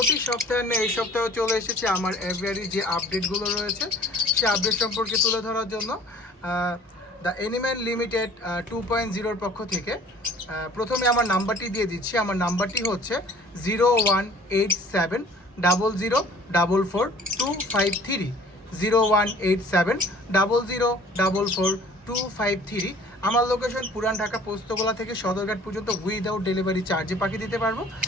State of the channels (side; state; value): both; normal; correlation 0.50